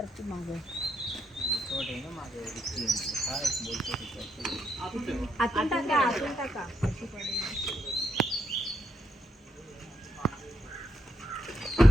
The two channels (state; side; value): normal; both; correlation 0.79